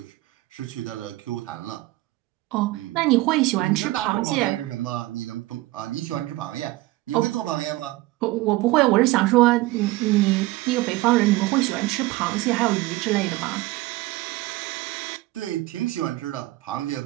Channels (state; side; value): quieter; left; 18.9 dB